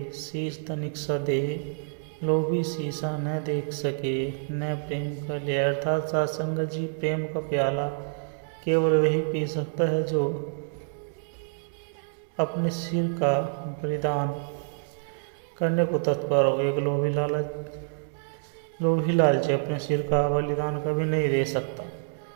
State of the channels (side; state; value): left; silent; digital silence